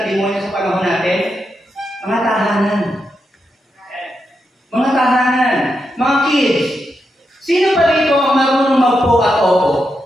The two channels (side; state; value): both; normal; correlation 0.85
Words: ng demonyo sa panahon natin? Mga tahanan. Mga tahanan. Mga kids. Sino pa rito ang marunong magpo at opo?